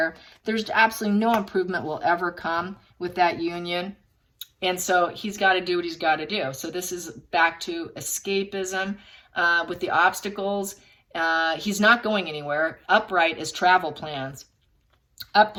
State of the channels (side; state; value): both; identical; correlation 1.00